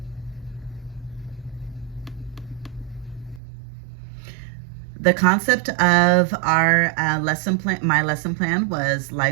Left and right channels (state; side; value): drops out; left; at 3.4 s